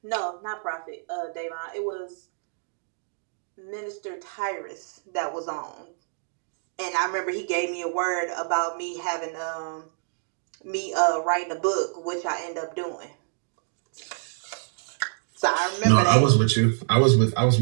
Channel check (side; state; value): left; silent; digital silence